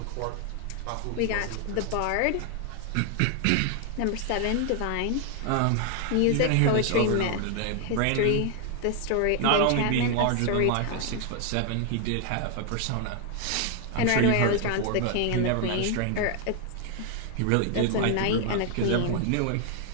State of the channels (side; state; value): both; different; correlation 0.00